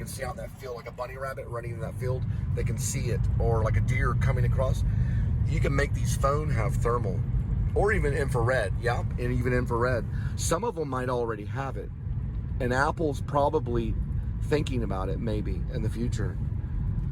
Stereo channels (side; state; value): both; identical; correlation 1.00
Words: see out in that field, like a bunny rabbit running in that field. They can see it, or like a deer coming across. You can make these phones have thermal, or even infrared. Yeah, and even infrared. Some of them might already have it, and Apple's probably thinking about it maybe in the future.